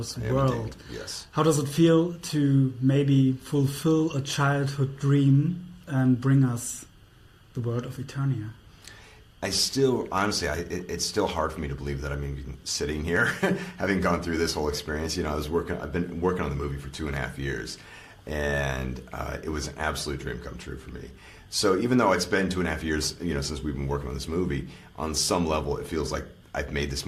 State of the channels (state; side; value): identical; both; correlation 1.00